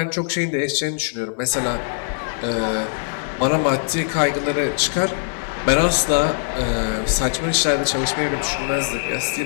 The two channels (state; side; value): silent; right; digital silence